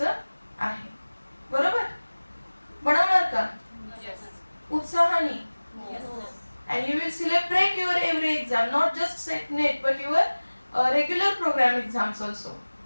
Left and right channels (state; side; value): inverted; both; correlation -1.00